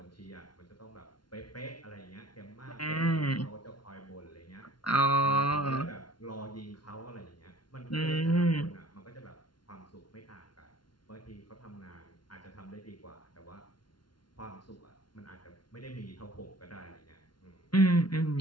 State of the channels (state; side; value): late; right; 0.71 ms